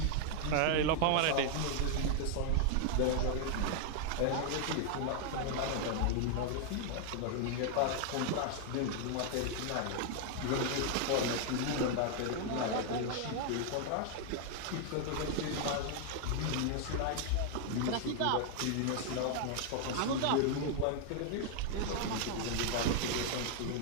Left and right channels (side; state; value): both; different; correlation 0.00